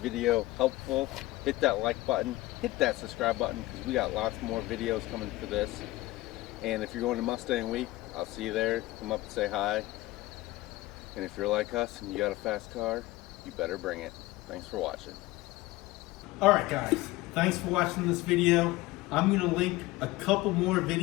video helpful, hit that like button, hit that subscribe button, because we got lots more videos coming for this. And if you're going to Mustang Week, I'll see you there. Come up and say hi. And if you're like us and you got a fast car, you better bring it. Thanks for watching. Alright guys, thanks for watching this video. I'm going to link a couple more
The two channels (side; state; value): right; quieter; 18.8 dB